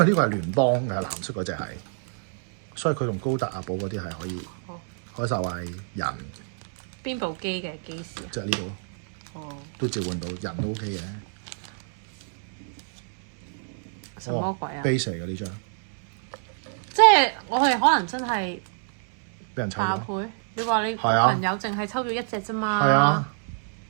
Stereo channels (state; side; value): silent; left; digital silence